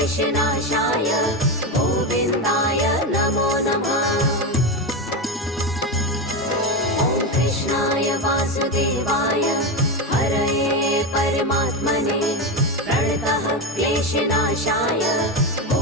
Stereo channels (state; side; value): normal; both; correlation 0.15